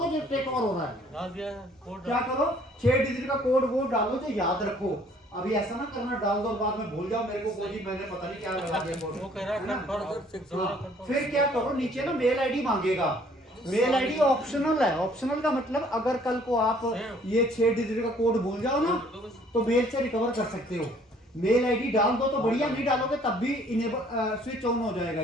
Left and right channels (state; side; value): normal; both; correlation 0.59